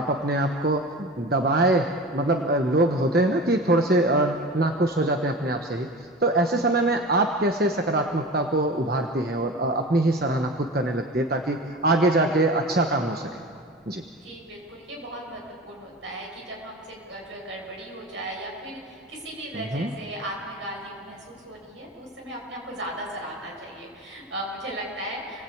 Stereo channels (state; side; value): normal; both; correlation 0.33